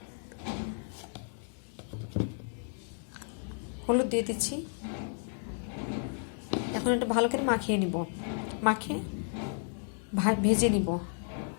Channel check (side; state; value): right; silent; 56 dB below the other